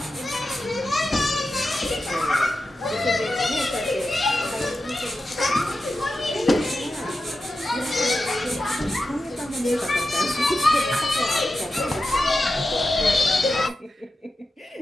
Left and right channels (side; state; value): both; normal; correlation 0.91